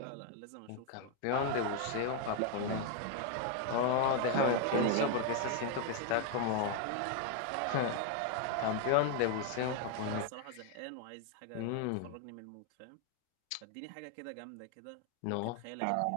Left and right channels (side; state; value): both; different; correlation 0.01